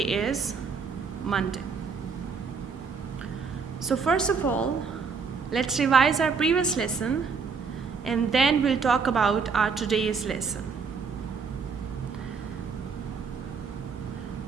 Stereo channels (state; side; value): quieter; left; 5.4 dB